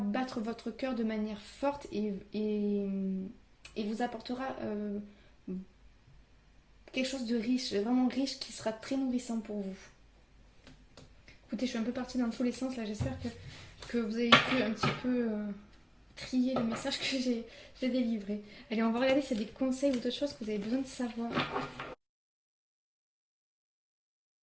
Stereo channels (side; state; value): both; identical; correlation 1.00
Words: votre cœur de manière forte et vous apportera quelque chose de riche, vraiment riche, qui sera très nourrissant pour vous. Écoutez, je suis un peu partie dans tous les sens là, j'espère que vous avez pu un petit peu trier le message que j'ai délivré. Allez, on va regarder s'il y a des conseils ou d'autres choses que vous avez besoin de savoir.